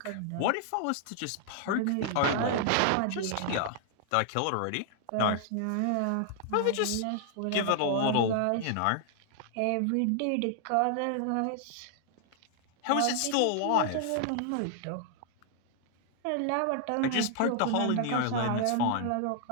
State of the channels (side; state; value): both; different; correlation 0.00